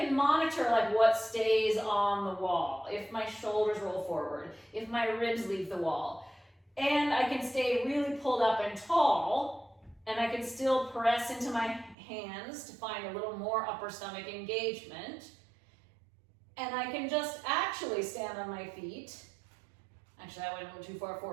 monitor like what stays on the wall, if my shoulders roll forward, if my ribs leave the wall. And I can stay really pulled up and tall, and I can still press into my hands to find a little more upper stomach engagement. And I can just actually stand on my feet. Actually, I went a little too far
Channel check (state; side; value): drops out; left; at 12.0 s